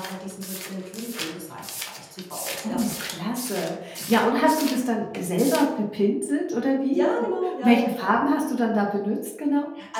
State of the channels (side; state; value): both; identical; correlation 1.00